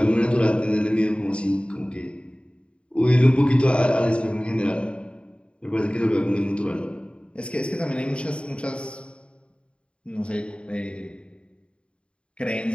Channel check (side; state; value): right; late; 0.056 ms